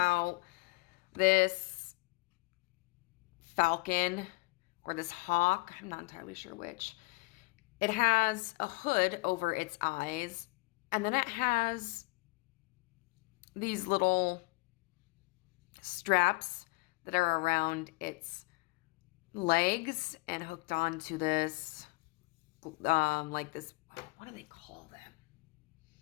this falcon or this hawk, I'm not entirely sure which, it has a hood over its eyes, and then it has these little straps that are around its legs and hooked onto this, like this, what do they call them?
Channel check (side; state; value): right; quieter; 26.0 dB